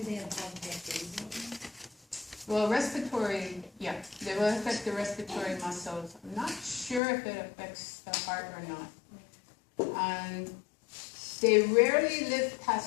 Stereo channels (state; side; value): drops out; right; at 7.0 s